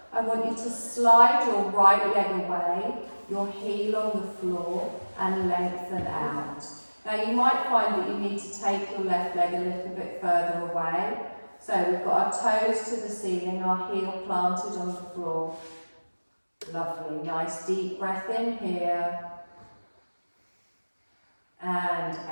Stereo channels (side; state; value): both; inverted; correlation -1.00